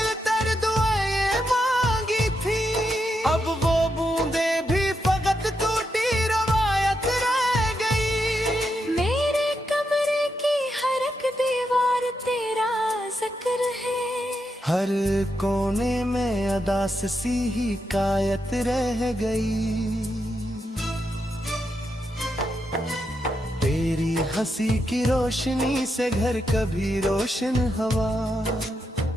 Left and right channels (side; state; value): both; normal; correlation 0.83